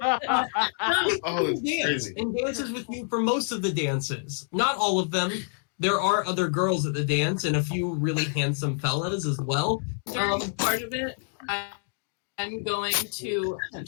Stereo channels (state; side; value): silent; right; 60 dB below the other